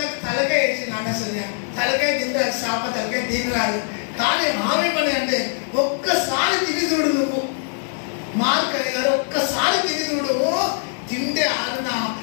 తలకాయ వేసింది. అసలు తలకాయ తింటారు, చేప తలకాయ తినరాదు. కానీ ఆమె పని అంటే ఒక్కసారి తిని చూడు నువ్వు. మార్క్ అని గారు ఒక్కసారి తిని చూడు, తింటే ఆరునా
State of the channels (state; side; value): silent; right; digital silence